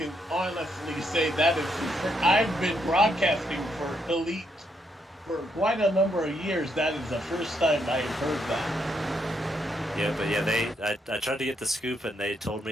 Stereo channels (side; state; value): both; normal; correlation 0.76